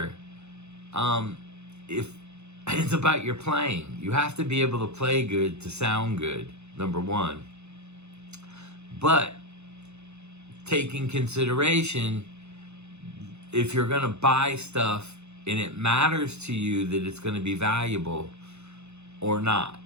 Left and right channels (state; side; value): late; left; 0.81 ms